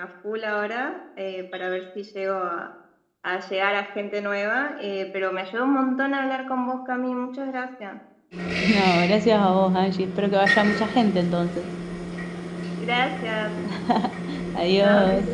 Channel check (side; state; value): both; identical; correlation 1.00